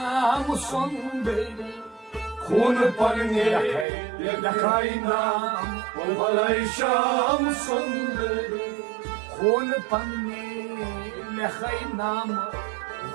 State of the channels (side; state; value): left; drops out; at 3.9 s